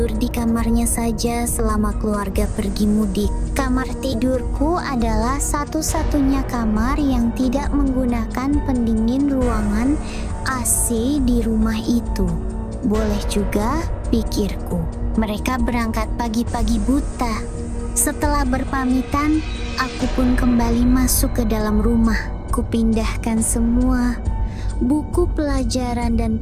di kamarnya saja selama keluarga pergi mudik. Kamar tidurku adalah satu-satunya kamar yang tidak menggunakan pendingin ruangan AC di rumah itu. Boleh juga, pikirku. Mereka berangkat pagi-pagi buta. Setelah berpamitan, aku pun kembali masuk ke dalam rumah. Kupindahkan semua buku pelajaran dan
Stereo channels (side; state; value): both; identical; correlation 1.00